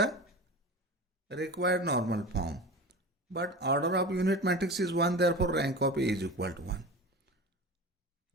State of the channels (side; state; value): both; normal; correlation 0.32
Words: required normal form. But order of unit matrix is 1, therefore rank of A is equal to 1.